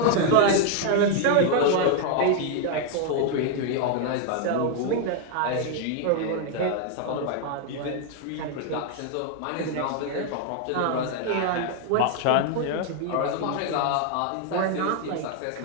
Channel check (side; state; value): both; different; correlation 0.00